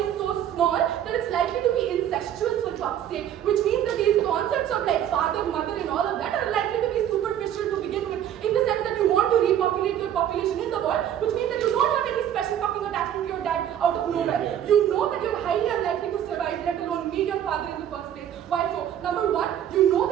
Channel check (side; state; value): left; quieter; 10.5 dB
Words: so small that it's likely to be incestuous for fuck's sake, which means that these concepts of like father, mother and all of that are likely to be superficial to begin with, in the sense that you want to repopulate your population in the world, which means that you don't have any special fucking attachment to your dad out of nowhere. You know that you're highly unlikely to survive, let alone meet your father in the first place. Why so? Number 1, you know